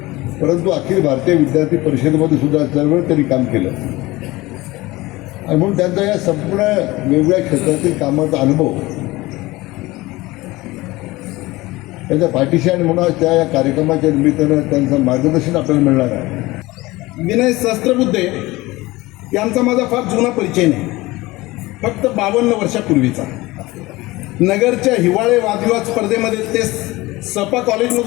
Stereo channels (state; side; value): quieter; right; 20.2 dB